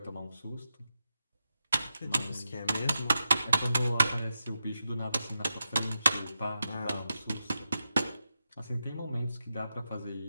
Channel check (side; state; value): both; inverted; correlation -0.89